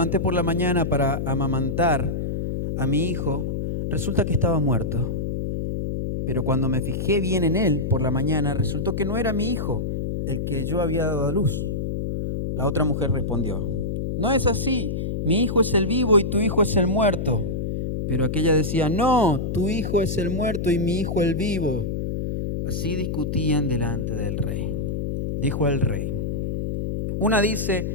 por la mañana para amamantar a mi hijo, resulta que estaba muerto. Pero cuando me fijé bien en él por la mañana, resultó que no era mi hijo, el que yo había dado a luz. La otra mujer respondió: no es así, mi hijo es el vivo y tu hijo es el muerto. Pero aquella decía: no, tu hijo es el muerto y mi hijo el vivo. Así discutían delante del rey. Dijo el rey: una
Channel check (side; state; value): left; noise; hum, 2 dB below the sound